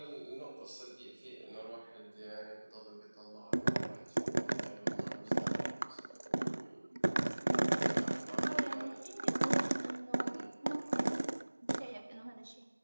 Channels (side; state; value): both; inverted; correlation -1.00